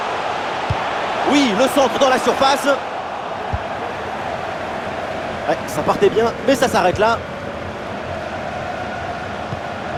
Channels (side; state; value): both; identical; correlation 1.00